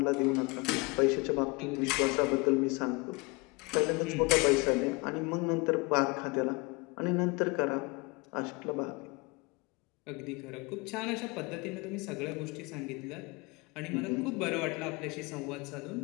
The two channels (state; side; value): quieter; right; 27.7 dB